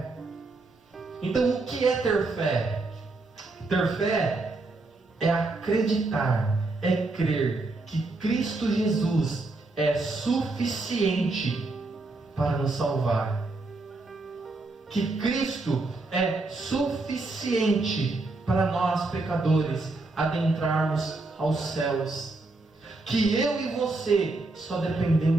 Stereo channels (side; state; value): left; quieter; 3.3 dB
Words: Então, o que é ter fé? Ter fé é acreditar, é crer que Cristo Jesus é suficiente para nos salvar, que Cristo é suficiente para nós pecadores adentrarmos aos céus, que eu e você só